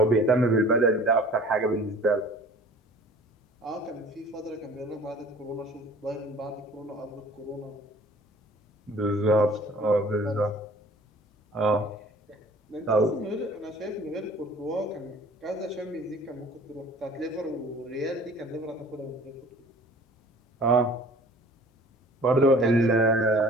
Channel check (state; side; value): normal; both; correlation 0.48